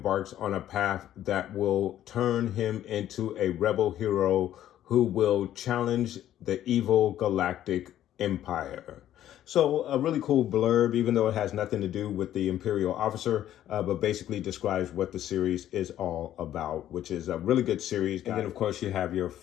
on a path that will turn him into a rebel hero who will challenge the evil galactic empire." So a really cool blurb, even though it has nothing to do with the Imperial Officer, but basically describes what the series is all about, which is a really good series. And then, of course, you have your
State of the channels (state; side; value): quieter; right; 12.0 dB